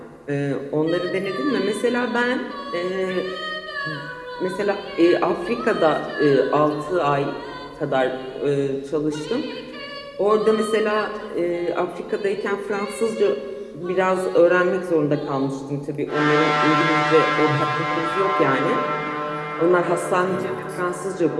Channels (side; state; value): both; identical; correlation 1.00